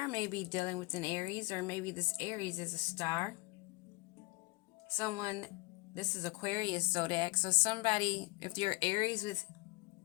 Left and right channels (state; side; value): quieter; right; 25.1 dB